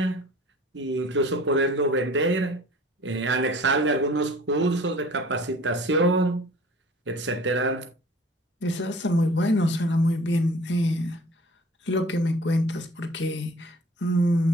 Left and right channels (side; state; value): both; normal; correlation 0.47